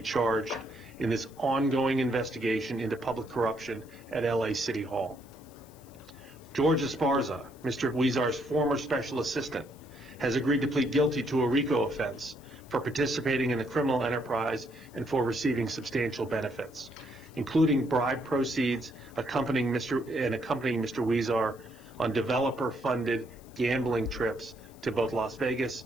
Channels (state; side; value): noise; left; hiss, 26 dB below the sound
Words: charged in this ongoing investigation into public corruption at LA City Hall. George Esparza, Mr. Huizar's former special assistant, has agreed to plead guilty to a RICO offense for participating in the criminal enterprise and for receiving substantial benefits, including bribe proceeds accompanying Mr. Huizar on developer-funded gambling trips to both Las Vegas